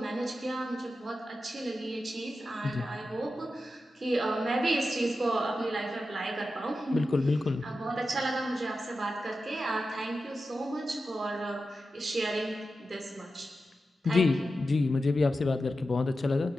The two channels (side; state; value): both; normal; correlation 0.91